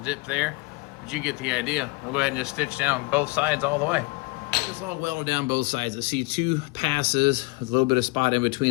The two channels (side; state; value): right; quieter; 25.1 dB